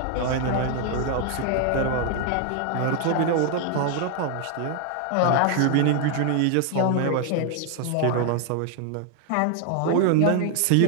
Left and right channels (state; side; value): different; both; correlation 0.00